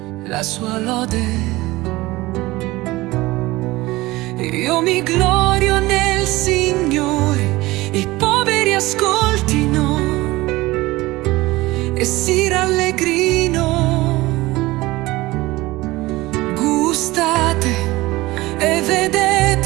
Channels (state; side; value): quieter; left; 19.6 dB